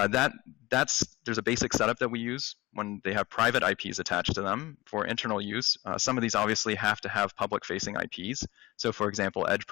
a basic setup that we use when they have private IPs attached to them for internal use. Some of these obviously have to have public-facing IPs. So for example, Edge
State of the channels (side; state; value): right; quieter; 19.9 dB